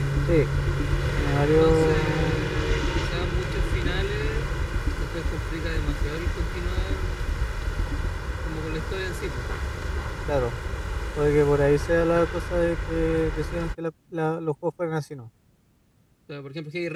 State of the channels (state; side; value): identical; both; correlation 1.00